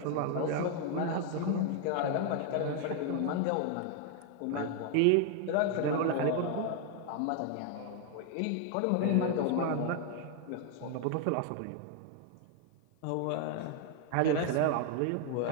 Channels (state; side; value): different; both; correlation 0.00